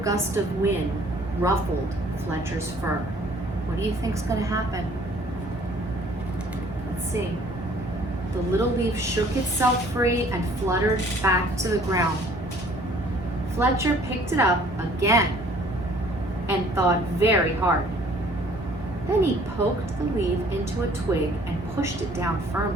gust of wind ruffled Fletcher's fur. What do you think's going to happen? Let's see. The little leaf shook itself free and fluttered back to the ground. Fletcher picked it up again and thought very hard. Then he poked the leaf into a twig and pushed it down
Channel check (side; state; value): both; normal; correlation 0.56